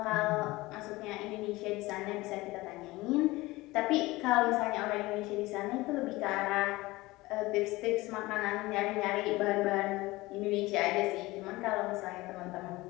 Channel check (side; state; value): right; quieter; 20.2 dB